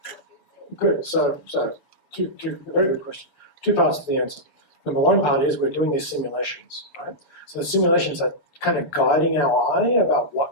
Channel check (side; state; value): right; late; 7.1 ms